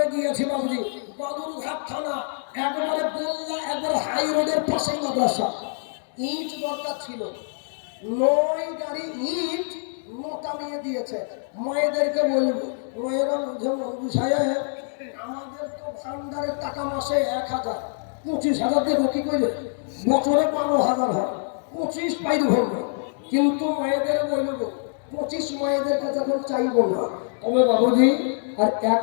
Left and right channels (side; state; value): right; silent; digital silence